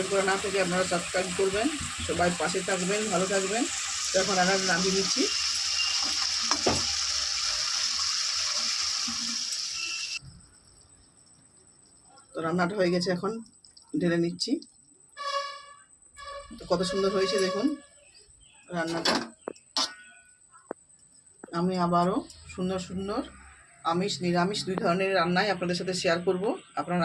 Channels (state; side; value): identical; both; correlation 1.00